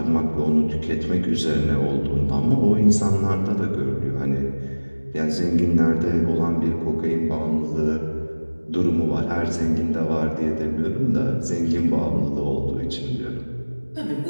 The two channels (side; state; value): both; inverted; correlation -1.00